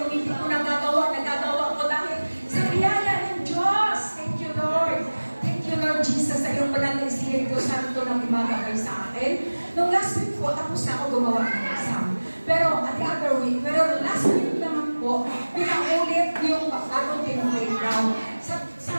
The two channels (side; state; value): both; inverted; correlation -1.00